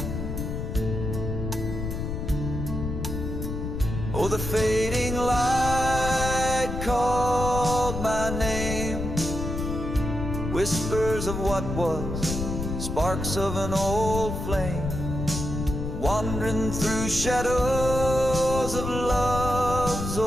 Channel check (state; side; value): noise; left; rumble, 4 dB below the sound